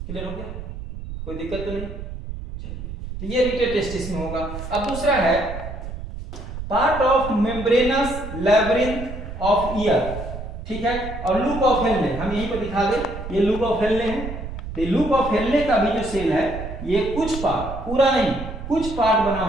क्लियर हो गया, कोई दिक्कत तो नहीं। चलिए, तो ये रीटर टेस्टिस में होगा। अब दूसरा है part of membranes labyrinth of year, ठीक है, और लूप ऑफ हेनले। हम यहीं पर दिखा दें, ये लूप ऑफ हेनले है। तो लूप ऑफ हेनले का भी जो सेल है ये कुछ पार्ट, पूरा नहीं, कुछ पार्ट बना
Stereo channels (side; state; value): right; noise; rumble, 9 dB below the sound